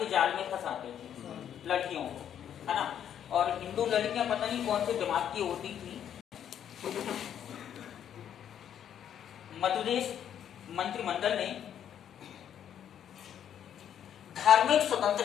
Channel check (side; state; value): right; quieter; 9.5 dB